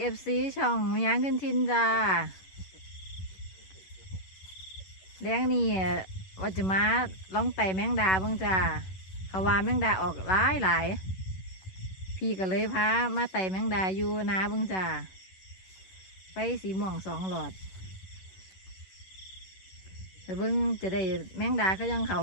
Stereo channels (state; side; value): late; right; 11 ms